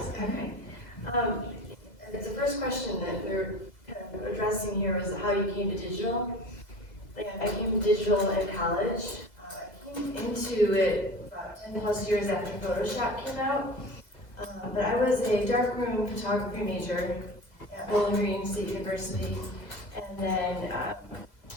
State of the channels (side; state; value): right; late; 2.0 ms